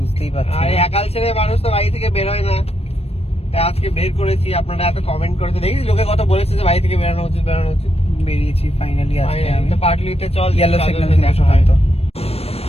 পারছি। আর একাল ছেলে মানুষ তো বাড়ি থেকে বের হয় না, তাই আজকে বের করেছি। আপনারা এত কমেন্ট করেছে, দেখি লোকে কত বলেছে যে বাড়ি থেকে বেরোনো উচিত, বেরোনো উচিত। বেরিয়েছি ফাইনালি আজকে আমি। তো পার্টলিতে চল, ইয়েলো সিগন্যাল দেখা হয়।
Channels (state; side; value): late; right; 0.29 ms